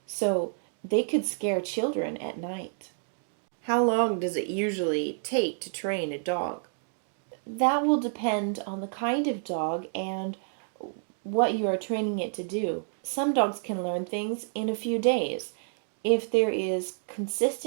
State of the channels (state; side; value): silent; left; digital silence